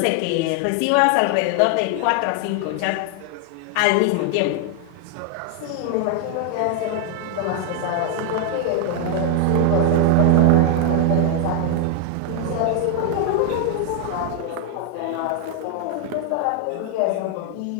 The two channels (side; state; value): both; different; correlation 0.00